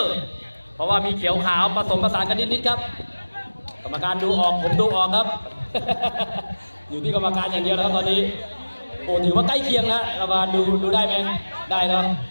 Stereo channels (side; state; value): both; inverted; correlation -1.00